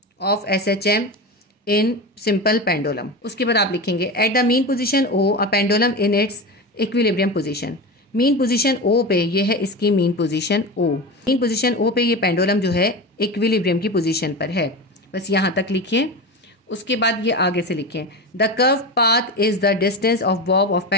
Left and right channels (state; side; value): normal; both; correlation 0.24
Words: of SHM in simple pendulum. उसके बाद आप लिखेंगे at the mean position O a pendulum in its equilibrium position. Mean position O पे ये है इसकी mean position O. Mean position O पे ये पेंडुलम जो है इक्विलिब्रियम की पोजीशन पर है। बस यहाँ तक लिखिए। उसके बाद ये आगे से लिखें the curve path is the distance of Bob of